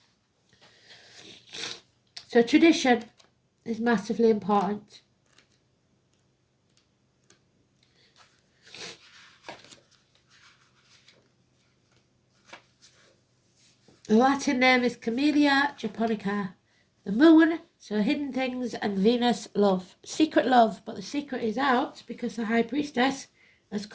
So tradition is massively important. The Latin name is Camellia japonica. The moon, so hidden things, and Venus, love. Secret love, but the secret is out because the High Priestess has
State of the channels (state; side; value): identical; both; correlation 1.00